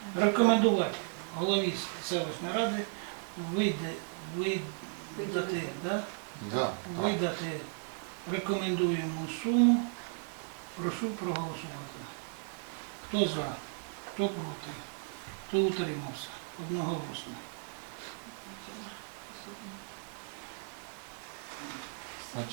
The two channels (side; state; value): left; silent; 55 dB below the other